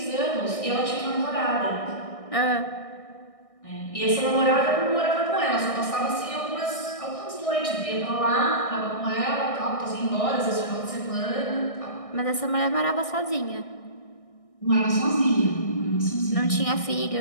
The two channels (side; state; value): right; late; 1.6 ms